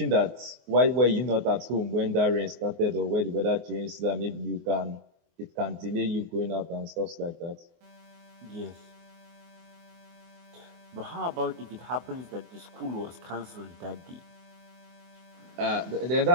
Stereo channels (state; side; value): late; left; 24 ms